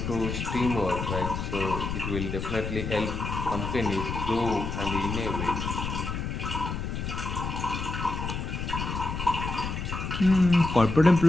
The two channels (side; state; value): left; noise; rumble, 4 dB below the sound